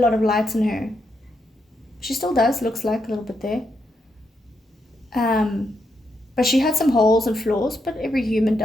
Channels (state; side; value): normal; both; correlation 0.81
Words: of lights in her. She still does, looks like a little bit there. But she had some holes and flaws, but every human